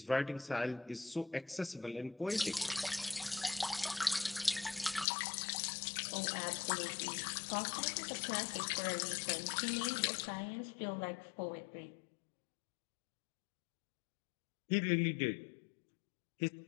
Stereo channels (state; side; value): drops out; right; at 5.1 s